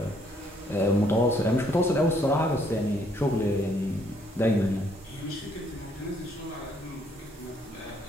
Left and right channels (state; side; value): normal; both; correlation 0.67